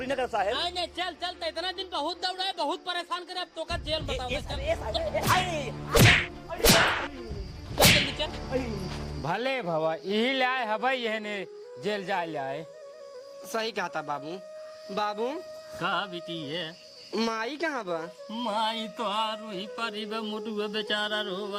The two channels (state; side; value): identical; both; correlation 1.00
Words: न कर साहेब। नहीं नहीं चल चल। तो इतना दिन बहुत दौड़ा है, बहुत परेशान करे। अब तो का जेल बताओ। जल्दी चल। भले भवा यही ले आए हवाई यह ने जेल जा ले आए। सही कहा था बाबू। बाबू कहा बेटी है माई कहाँ बा? माई तो वही परी बा, मुटुआ बेचारा